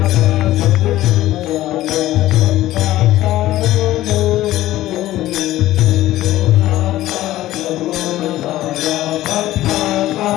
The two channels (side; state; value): right; quieter; 15.2 dB